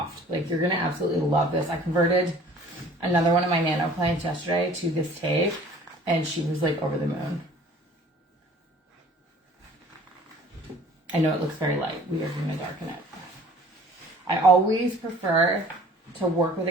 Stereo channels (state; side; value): normal; both; correlation 0.51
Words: Like, you're going to absolutely love this. I converted another one of my nano plants yesterday to this tape, and she was like over the moon. I know it looks very light. We are going to darken it. I always prefer to work with